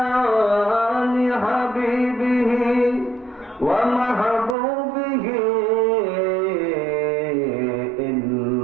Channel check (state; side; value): drops out; left; at 4.5 s